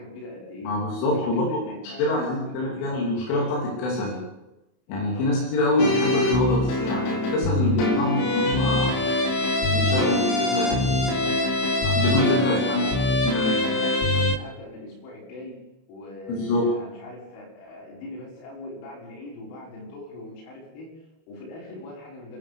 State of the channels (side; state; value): right; late; 31 ms